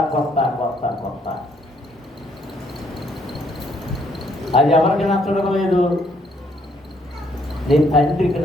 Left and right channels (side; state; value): both; normal; correlation 0.68